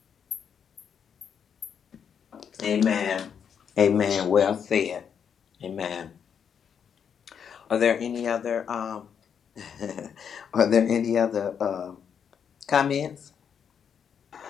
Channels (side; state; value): right; quieter; 7.6 dB